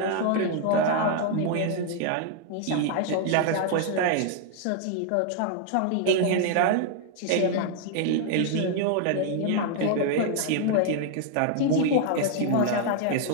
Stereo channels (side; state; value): both; different; correlation 0.00